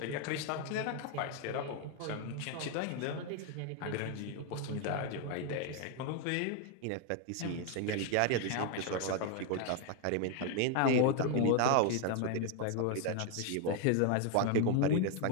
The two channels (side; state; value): both; different; correlation 0.01